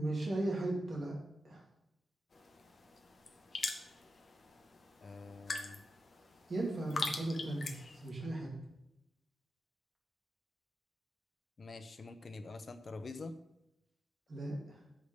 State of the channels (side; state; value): both; normal; correlation 0.89